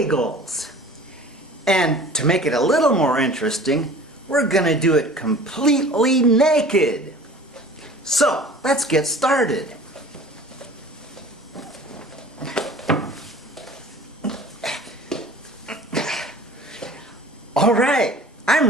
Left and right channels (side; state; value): both; normal; correlation 0.44